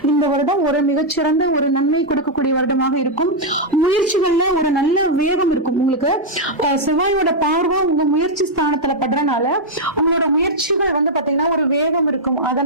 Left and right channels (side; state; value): both; normal; correlation -0.04